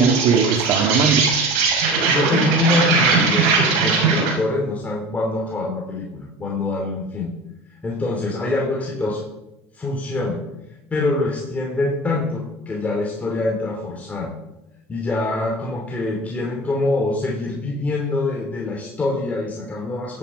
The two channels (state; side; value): normal; both; correlation 0.37